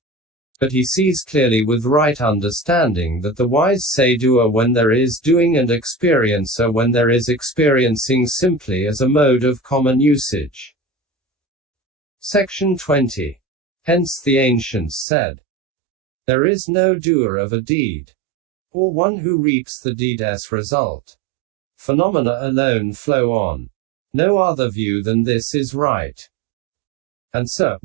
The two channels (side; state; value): left; drops out; at 15.1 s